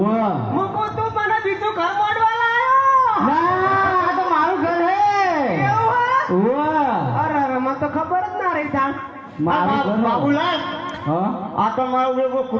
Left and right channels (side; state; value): both; identical; correlation 1.00